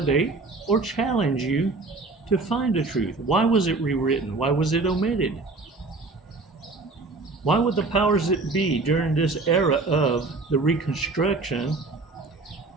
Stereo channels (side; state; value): left; quieter; 3.6 dB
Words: or challenge you to find the truth. Why was it rewritten? Why was it omitted? Why would the powers that be during this era of the Reconstruction